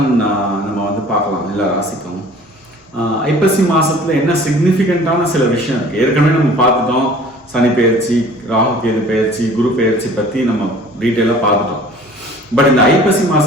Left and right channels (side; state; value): both; normal; correlation 0.48